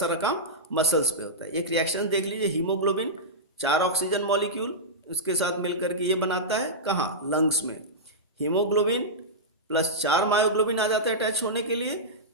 काम मसल्स पे होता है. एक रिएक्शन देख लीजिए, हीमोग्लोबिन 4 ऑक्सीजन मॉलिक्यूल उसके साथ मिलकर के ये बनाता है कहाँ? लंग्स में. हीमोग्लोबिन प्लस 4 मायोग्लोबिन आ जाता है अटैच होने के लिए,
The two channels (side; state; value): both; normal; correlation -0.13